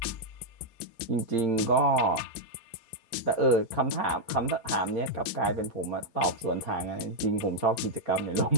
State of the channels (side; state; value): right; late; 4.3 ms